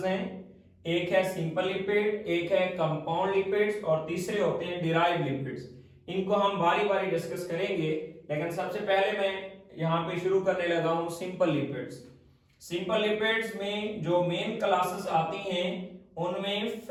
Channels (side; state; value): both; identical; correlation 1.00